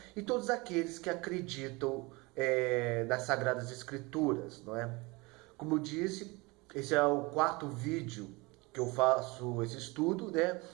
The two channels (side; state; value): left; quieter; 25.0 dB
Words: e todos aqueles que acreditam nas Sagradas Escrituras, não é? Como eu disse, esse é o quarto vídeo que eu faço esse estudo, né?